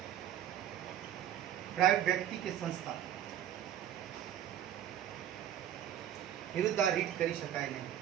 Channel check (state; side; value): quieter; left; 10.8 dB